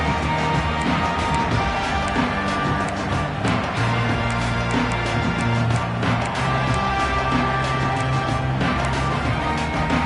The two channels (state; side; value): identical; both; correlation 1.00